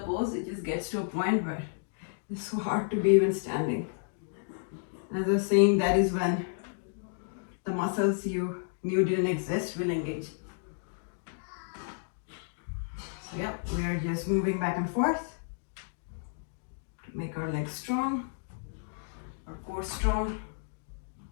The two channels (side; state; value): right; silent; digital silence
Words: it just gets to a point where it's so hard to be even standing. As I was saying, that is when the muscles you knew didn't exist will engage. So yeah, we are just moving back and forth to make our legs strong. our core strong.